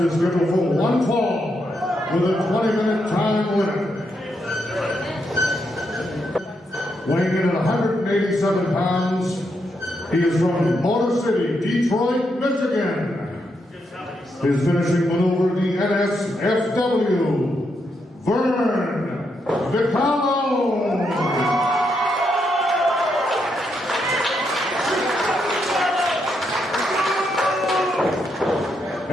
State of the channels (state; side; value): normal; both; correlation 0.80